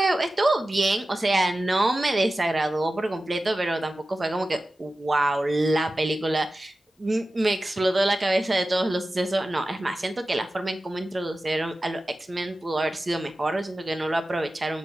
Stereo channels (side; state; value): both; normal; correlation 0.95